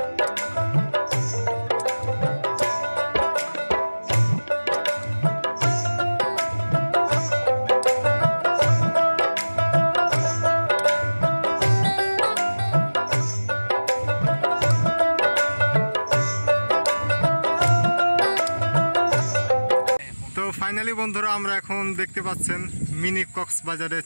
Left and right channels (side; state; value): both; inverted; correlation -1.00